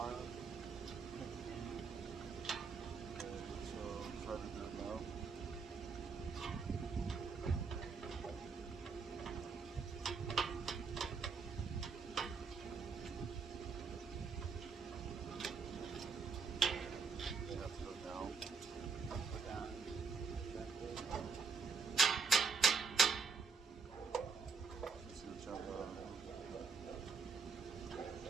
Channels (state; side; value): quieter; left; 5.1 dB